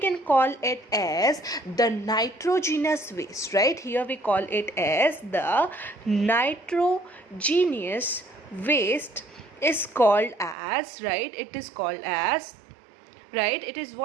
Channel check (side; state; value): left; drops out; at 10.6 s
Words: call it as the nitrogenous waste, right? Here we call it as the nitrogenous waste is called as, right? It is called as, right? It is